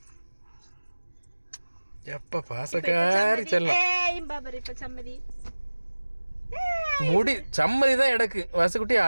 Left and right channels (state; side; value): inverted; both; correlation -1.00